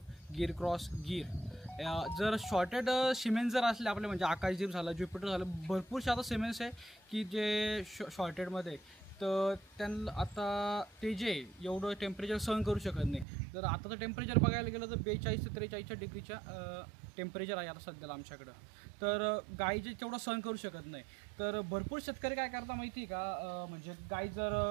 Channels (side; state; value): left; drops out; at 13.2 s